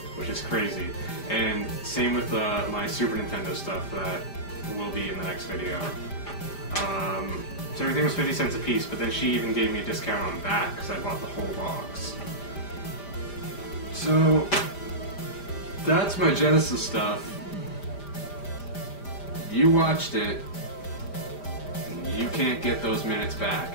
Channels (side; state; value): right; late; 5.0 ms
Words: which is crazy. And same with my Super Nintendo stuff that will be in the next video. So everything was 50 cents a piece, but then she even gave me a discount on that because I bought the whole box. So that's my Genesis stuff. You watched it, and you can't get those minutes back.